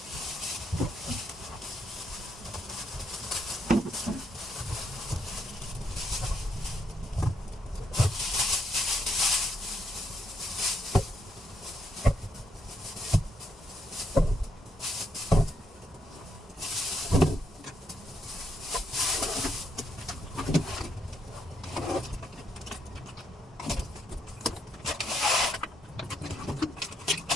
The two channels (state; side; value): normal; both; correlation 0.77